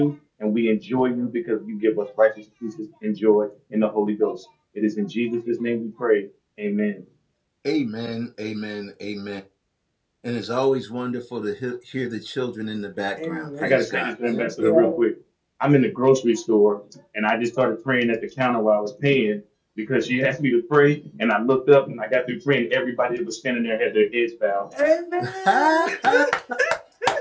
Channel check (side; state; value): both; identical; correlation 1.00